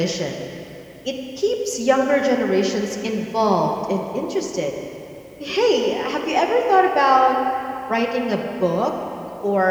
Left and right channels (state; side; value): identical; both; correlation 1.00